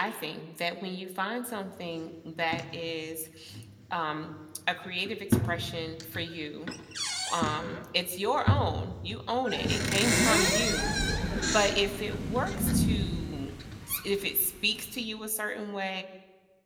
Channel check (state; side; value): identical; both; correlation 1.00